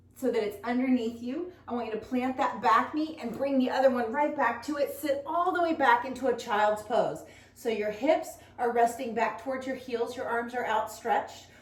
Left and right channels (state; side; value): identical; both; correlation 1.00